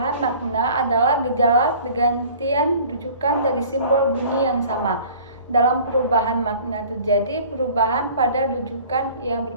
makna adalah gejala pergantian rujukan dari simbol bunyi yang sama. Dalam perubahan makna terjadi perubahan pada rujukan yang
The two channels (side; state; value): both; inverted; correlation -0.47